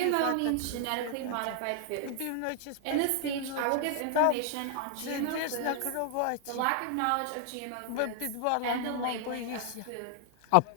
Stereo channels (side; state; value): both; different; correlation 0.00